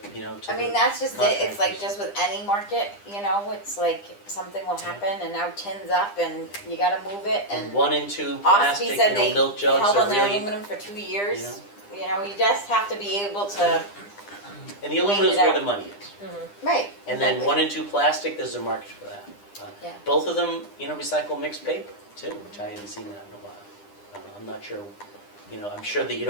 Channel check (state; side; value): late; right; 9.9 ms